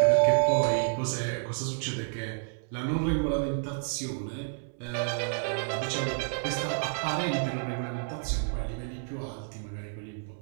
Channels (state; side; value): silent; left; 58 dB below the other